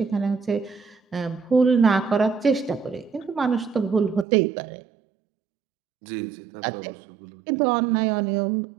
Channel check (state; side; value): drops out; left; at 4.2 s